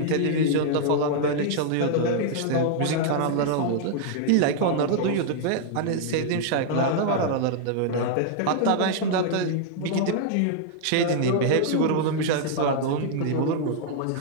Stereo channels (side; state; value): both; different; correlation -0.01